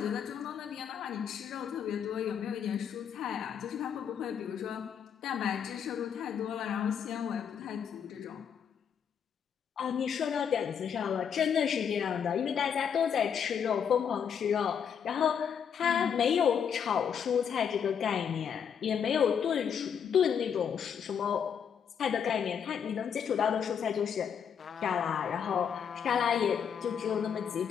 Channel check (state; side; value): quieter; right; 7.7 dB